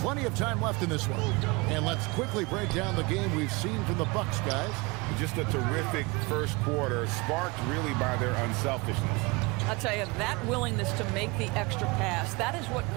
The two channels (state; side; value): quieter; left; 26.2 dB